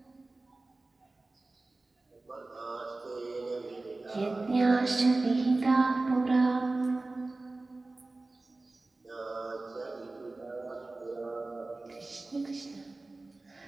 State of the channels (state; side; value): quieter; left; 3.2 dB